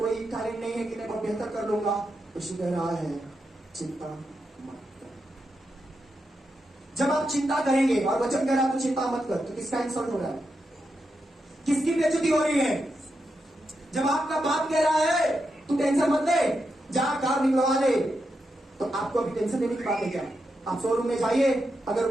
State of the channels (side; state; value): both; normal; correlation 0.85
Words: टैलेंट नहीं है कि मैं बहुत बेहतर कर लूंगा। यीशु कह रहा है चिंता मत करो। जब आप चिंता करेंगे और वचन कह रहा है तो चिंता मत कर, तो किसका इंसल्ट हो रहा है? किसकी बेइज्जती हो रही है? जब आपका बाप कह रहा है तू टेंशन मत ले, जा कार निकलवा ले, तो आपको अभी टेंशन लेने की बात है क्या? आप शोरूम में जाइए,